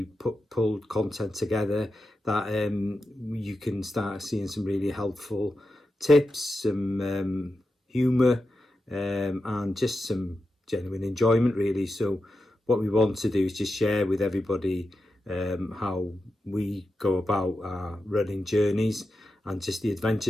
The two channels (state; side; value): normal; both; correlation 0.90